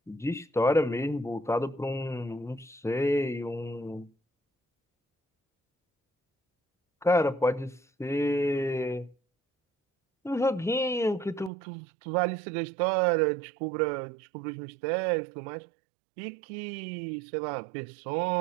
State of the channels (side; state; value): left; drops out; at 11.5 s